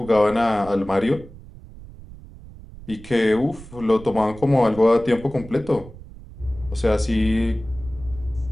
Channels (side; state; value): right; noise; rumble, 17 dB below the sound